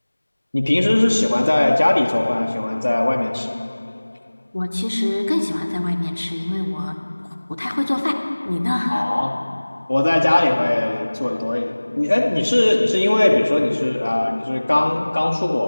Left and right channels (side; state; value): both; inverted; correlation -1.00